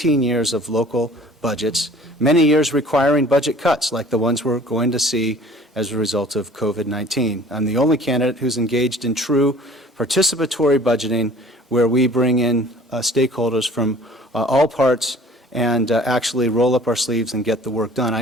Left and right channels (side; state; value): both; normal; correlation 0.49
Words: years of local budgets, many years requiring budget cuts like the ones we're going to see as a result of COVID-19. I'm the only candidate who's engaged in true participatory budgeting where we bring in stakeholders from all parts and actually roll up our sleeves and get the work done.